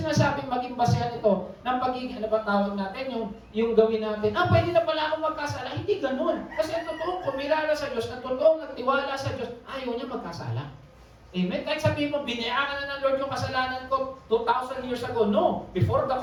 maging basehan ito ng pagiging, ano ba tawag natin, yung gawin natin, pwede na pala akong magkasala. Hindi ganun. Kasi ang totoong kumilala sa Diyos, ang totoong nagtiwala sa Diyos, ayaw niya magkasala. Amen? Kahit sabihin mo, binayaran na ng Lord yung kasalanan ko 2,000 years ago. No. Before the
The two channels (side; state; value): both; identical; correlation 1.00